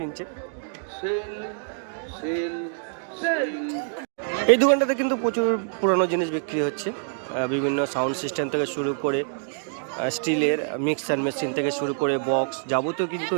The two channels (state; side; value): silent; left; 61 dB below the other